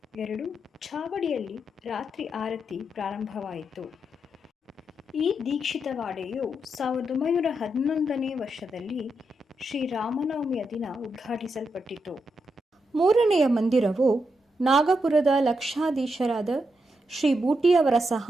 2 ಛಾವಡಿಯಲ್ಲಿ ರಾತ್ರಿ ಆರತಿ ಪ್ರಾರಂಭವಾಯಿತು. ಈ ದೀಕ್ಷಿತವಾಡೆಯು 1911ನೇ ವರ್ಷದಲ್ಲಿ ಶ್ರೀರಾಮನವಮಿಯ ದಿನ ಉದ್ಘಾಟಿಸಲ್ಪಟ್ಟಿತು. 3ನೆಯ ಮಂದಿರವು ನಾಗಪುರದ ಲಕ್ಷಾಧೀಶರಾದ ಶ್ರೀ ಬೂಟಿಯವರ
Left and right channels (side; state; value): both; normal; correlation 0.83